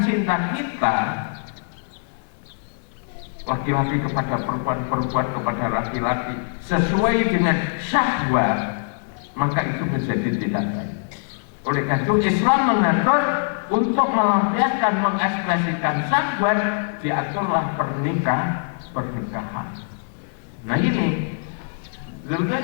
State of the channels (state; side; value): silent; right; digital silence